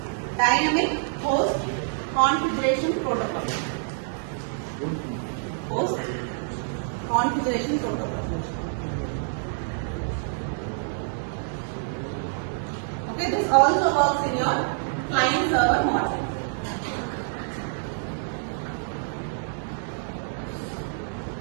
Dynamic Host Configuration Protocol. Host Configuration Protocol. Okay, this also works in your client server model.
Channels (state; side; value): silent; left; digital silence